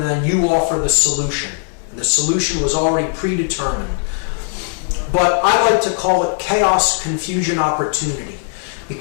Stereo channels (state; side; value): silent; right; 60 dB below the other